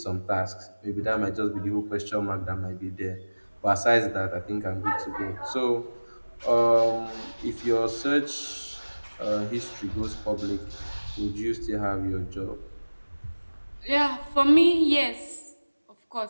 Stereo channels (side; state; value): both; inverted; correlation -1.00